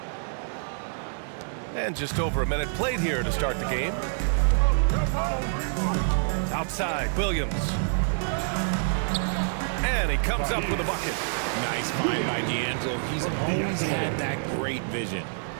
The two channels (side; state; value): left; silent; digital silence